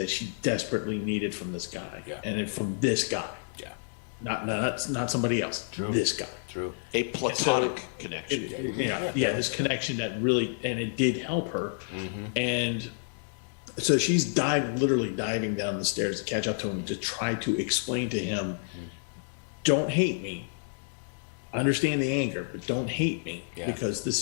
she desperately needed from this guy, and from this guy. Not somebody else. True. This guy. True. A platonic connection. This connection that really, and it did help her. And so she's literally diving down the stairs to catch up to him, to try to explain to him, don't hate me. I understand the anger, but don't hate me because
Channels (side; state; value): right; silent; digital silence